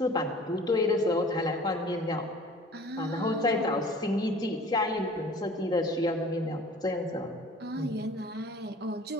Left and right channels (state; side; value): normal; both; correlation 0.47